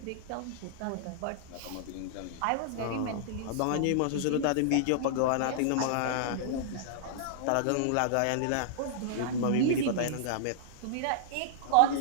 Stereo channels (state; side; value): different; both; correlation -0.01